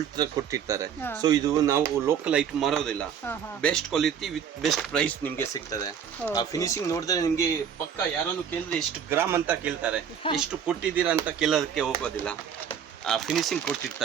ತರ ಕೊಟ್ಟಿರ್ತಾರೆ. ಸೊ ಇದು ನಾವು ಲೋಕಲ್ ಐಟಮ್ ಮಾರೋದಿಲ್ಲ, best quality with best price ನಿಮ್ಗೆ ಸಿಗ್ತದೆ. ಆ ಫಿನಿಶಿಂಗ್ ನೋಡಿದ್ರೆ ನಿಮ್ಗೆ ಪಕ್ಕ ಯಾರನ್ನು ಕೇಳಿದ್ರೆ ಎಷ್ಟು ಗ್ರಾಮ್ ಅಂತ ಕೇಳ್ತಾರೆ, ಎಷ್ಟು ಕೊಟ್ಟಿದ್ದೀರಾ ಅಂತ ಕೇಳೋದಕ್ಕೆ ಹೋಗೋದಿಲ್ಲ. ಆ ಫಿನಿಶಿಂಗ್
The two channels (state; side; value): quieter; left; 8.0 dB